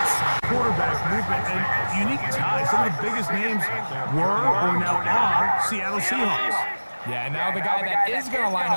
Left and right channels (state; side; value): inverted; both; correlation -1.00